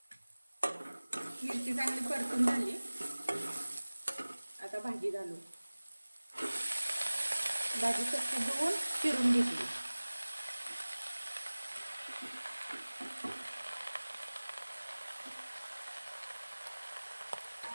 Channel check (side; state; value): both; inverted; correlation -1.00